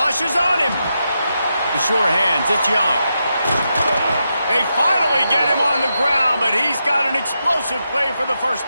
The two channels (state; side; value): inverted; both; correlation -0.86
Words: is on him. The sure hands, it's Young. They finally get him on the ground, but he's got an explosive play for the first